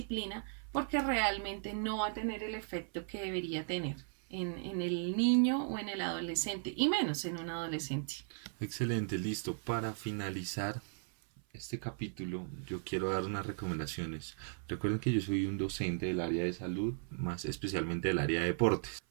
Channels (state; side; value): silent; left; 53 dB below the other